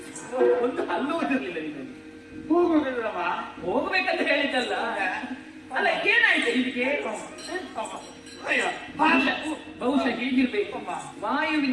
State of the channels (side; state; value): both; identical; correlation 1.00